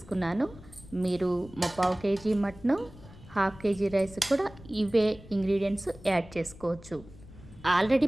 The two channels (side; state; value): left; noise; rumble, 19 dB below the sound